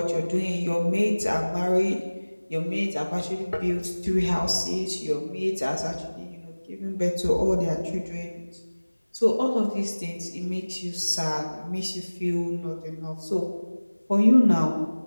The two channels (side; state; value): both; inverted; correlation -1.00